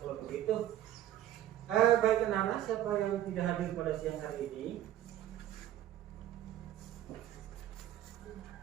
kalau begitu. Baik anak-anak, siapa yang tidak hadir pada siang hari ini?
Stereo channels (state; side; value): quieter; left; 12.6 dB